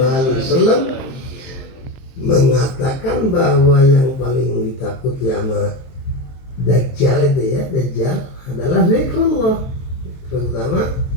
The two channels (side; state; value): right; late; 23 ms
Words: wasallam mengatakan bahwa yang paling ditakuti sama Dajjal itu ya, Dajjal adalah zikrullah. Terutama